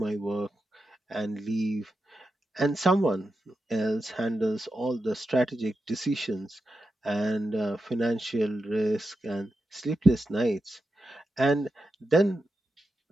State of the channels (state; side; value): normal; both; correlation 0.89